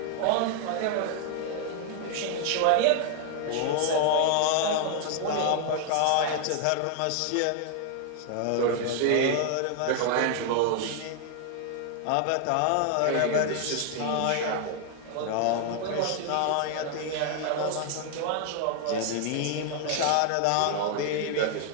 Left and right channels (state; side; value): different; both; correlation 0.00